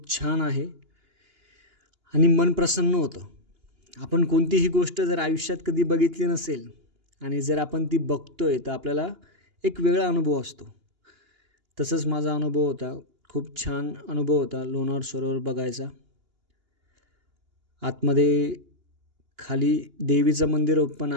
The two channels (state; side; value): late; left; 2.8 ms